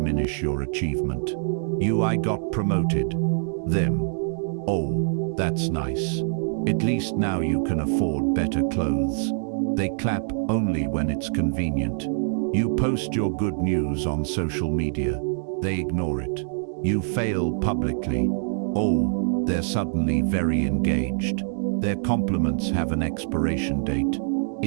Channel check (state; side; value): silent; left; digital silence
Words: your achievement. I got promoted. Them. Oh, that's nice. At least now you can afford better clothes. They clap only when it's convenient. You post your good news on social media. They ignore it. You fail publicly. Oh, they're suddenly very engaged. Their compliments have an expiration date.